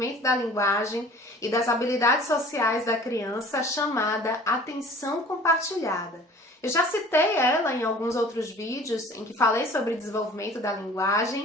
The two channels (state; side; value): normal; both; correlation 0.47